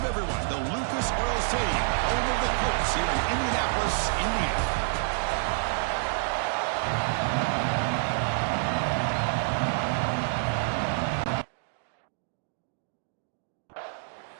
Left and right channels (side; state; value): left; silent; digital silence